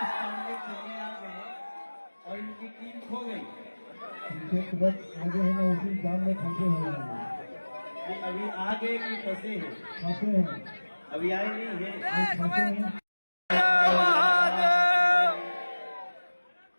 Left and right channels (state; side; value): inverted; both; correlation -1.00